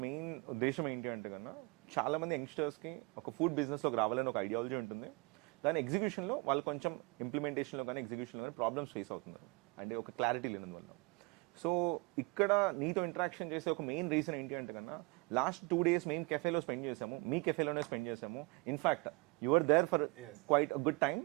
మెయిన్ ఉద్దేశం ఏంటి అంటే కన్నా చాలా మంది యంగ్స్టర్స్కి ఒక ఫుడ్ బిజినెస్లోకి రావాలని ఒక ఐడియాలజీ ఉంటుంది. దాని ఎగ్జిక్యూషన్లో వాళ్ళు కొంచెం ఇంప్లిమెంటేషన్లో కానీ ఎగ్జిక్యూషన్లో కానీ ప్రాబ్లమ్స్ ఫేస్ అవుతున్నారు, అంటే ఒక క్లారిటీ లేనందువల్ల. సో ఇక్కడ నీతో ఇంటరాక్షన్ చేసే ఒక మెయిన్ రీజన్ ఏంటి అంటే కన్నా లాస్ట్ 2 days మేము కెఫేలో స్పెండ్ చేసాము, మీ కెఫేలోనే స్పెండ్ చేసాము. In fact your there for quite good time,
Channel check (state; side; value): quieter; left; 27.6 dB